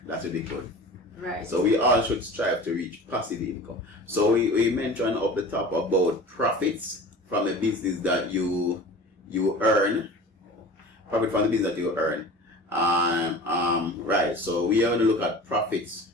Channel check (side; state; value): both; normal; correlation 0.38